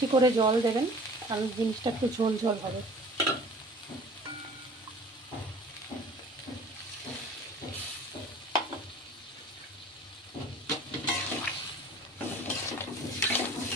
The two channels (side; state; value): both; normal; correlation 0.46